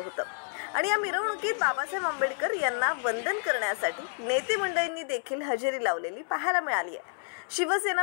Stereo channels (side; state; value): right; silent; 58 dB below the other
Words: आणि या मिरवणुकीत बाबासाहेब आंबेडकर यांना वंदन करण्यासाठी नेते मंडळींनी देखील हजेरी लावलेली पाहायला मिळाली आहे। शिवसेना